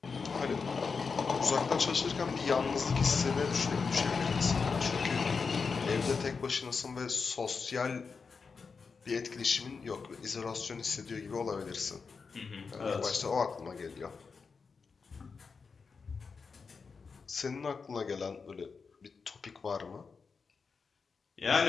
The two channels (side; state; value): right; quieter; 5.1 dB